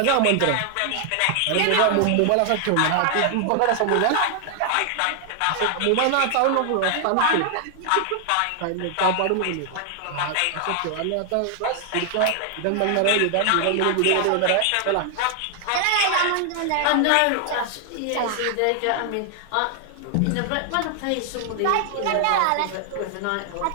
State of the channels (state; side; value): different; both; correlation 0.00